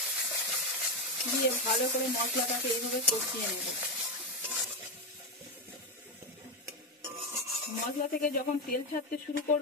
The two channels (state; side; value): normal; both; correlation 0.09